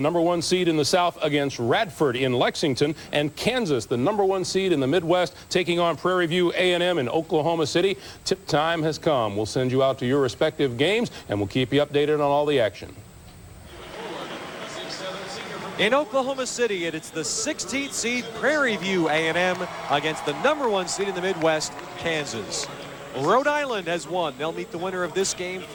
seed in the South, against Radford in Lexington, and Kansas, the #1 seed in the Midwest, taking on Prairie View A&M in Oklahoma City. Tip time has come. We'll send you out to your respective games, and we'll keep you updated on all the action. In Oklahoma City, it's the 16th seed Prairie View A&M against the #1 seed in the Midwest, Kansas. Rhode Island has won. They'll meet the winner of this game.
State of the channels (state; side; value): identical; both; correlation 1.00